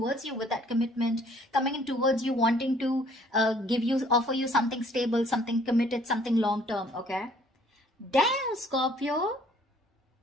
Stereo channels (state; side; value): normal; both; correlation 0.59